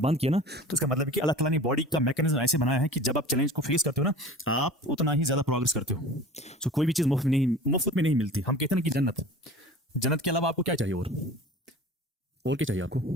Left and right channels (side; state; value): both; normal; correlation 0.40